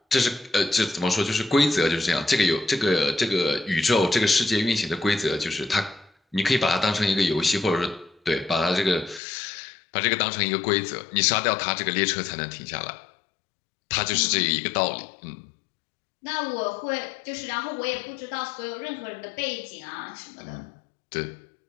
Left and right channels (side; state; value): right; drops out; at 9.2 s